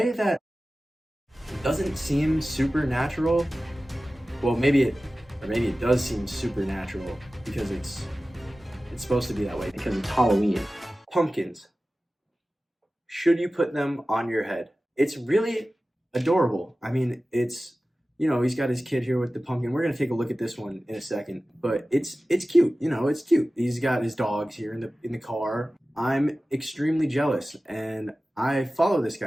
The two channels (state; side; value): normal; both; correlation 0.96